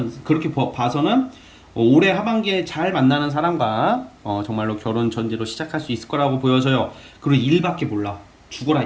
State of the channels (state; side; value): identical; both; correlation 1.00